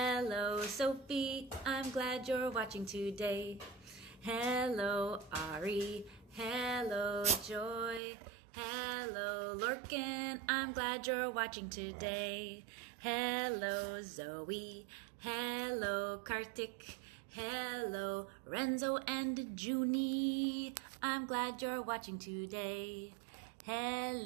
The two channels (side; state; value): left; drops out; at 8.0 s